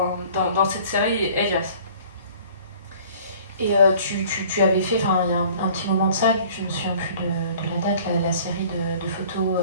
cette série Elias. Et tu avais fait, il y a un petit moment de ça, je ne me souviens plus de la date, la série de photos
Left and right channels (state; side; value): inverted; both; correlation -0.50